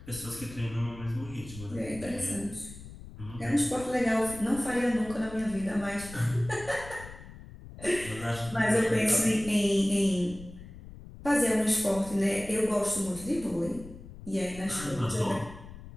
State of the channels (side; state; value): left; noise; rumble, 15 dB below the sound